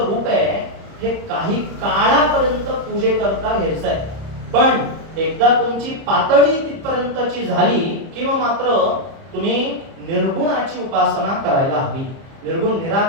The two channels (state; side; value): late; left; 30 ms